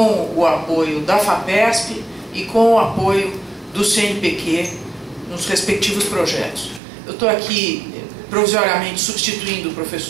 o apoio da FAPESP e com o apoio do CNPq nos respectivos projetos. Eu estou aqui provisoriamente substituindo o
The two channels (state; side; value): drops out; left; at 6.8 s